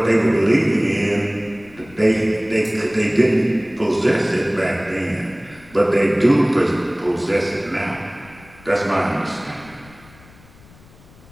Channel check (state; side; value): noise; left; rumble, 25 dB below the sound